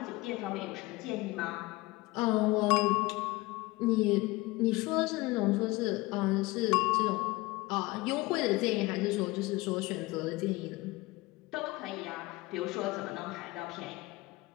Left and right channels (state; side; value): quieter; right; 21.5 dB